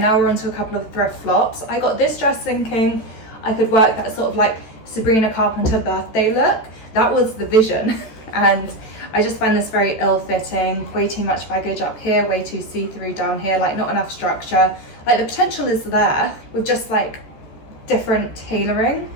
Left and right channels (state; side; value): late; right; 14 ms